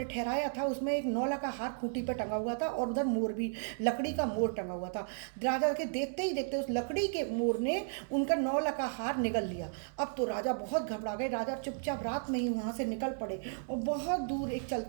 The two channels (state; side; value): silent; left; digital silence